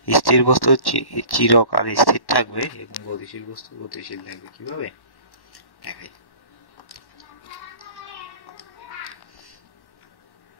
স্থির বস্তু চিরকাল স্থির থাকবে এবং গতিশীল বস্তু গতিশীল থাকবে। কিভাবে দেখাই?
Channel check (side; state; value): right; late; 1.1 ms